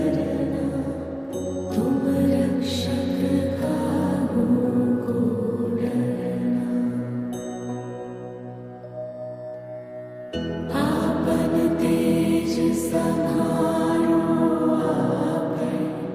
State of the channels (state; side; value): identical; both; correlation 1.00